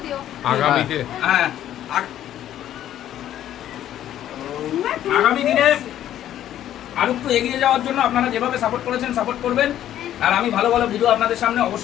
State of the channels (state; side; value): quieter; right; 11.7 dB